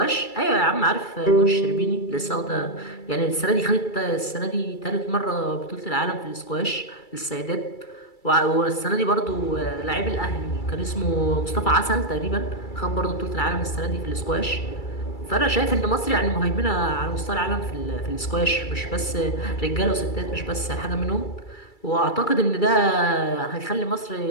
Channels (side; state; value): right; late; 2.3 ms